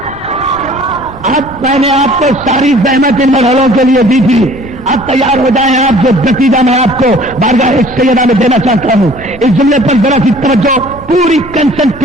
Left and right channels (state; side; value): noise; left; rumble, 22 dB below the sound